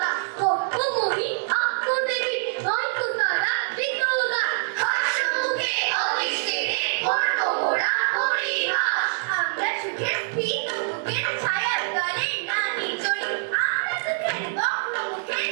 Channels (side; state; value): left; silent; digital silence